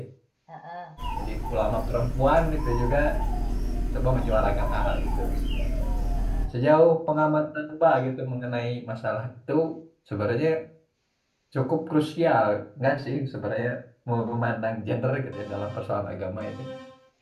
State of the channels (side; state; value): both; identical; correlation 1.00